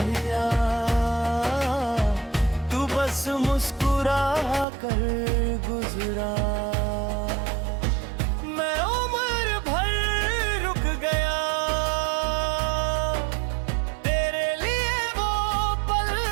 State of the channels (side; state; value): left; drops out; at 4.7 s